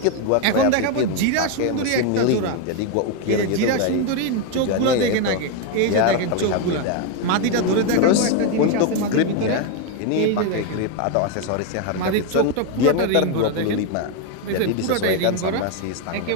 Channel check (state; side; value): different; both; correlation 0.02